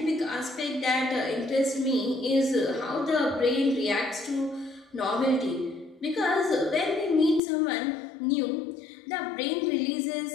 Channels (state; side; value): drops out; right; at 7.4 s